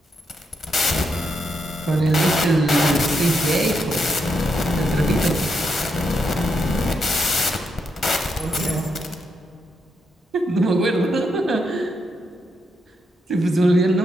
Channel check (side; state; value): both; normal; correlation 0.81